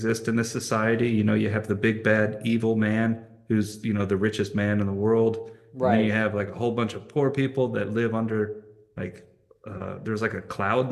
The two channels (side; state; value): both; identical; correlation 1.00